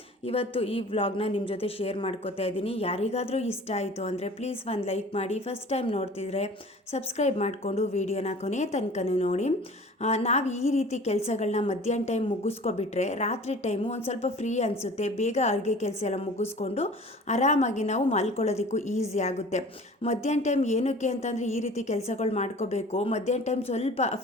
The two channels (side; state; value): both; normal; correlation 0.44